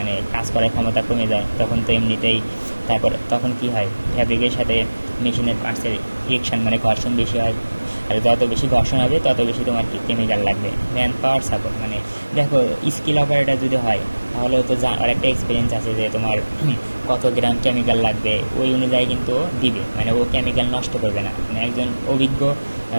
কাজ করার ক্ষমতা কমে যায়, তখন তো এমনিতেই তারপর তখন কী হয় ফ্যাব্রিকের সাথে মেশিনের পার্টসের রিয়েকশন মানে ঘর্ষণ বেশি হয়, আর যত বেশি ঘর্ষণ হবে তত বেশি তোমার কি কেমিক্যাল লাগবে। ম্যান পাওয়ার সাপোর্ট মানে দেখো স্কিল অপারেটর যদি হয় তাহলে তো আর একটা এক্সপিরিয়েন্স আছে যে তোমার কত গ্রাম কেমিক্যাল লাগবে ওই অনুযায়ী কিন্তু দিবে, মানে ও কেমিক্যাল নষ্ট করবে না। মানে একজন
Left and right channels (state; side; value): inverted; both; correlation -1.00